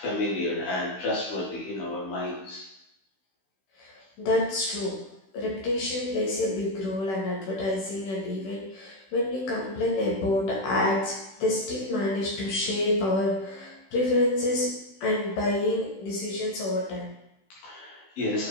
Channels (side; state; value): right; late; 16 ms